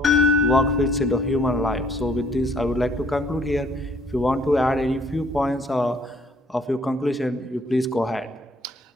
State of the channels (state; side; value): normal; both; correlation 0.60